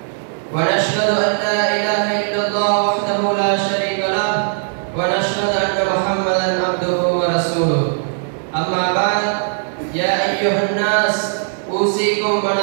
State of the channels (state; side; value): silent; left; digital silence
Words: ونشهد أن لا إله إلا الله وحده لا شريك له ونشهد أن محمدا عبده ورسوله أما بعد يا أيها الناس أوصيكم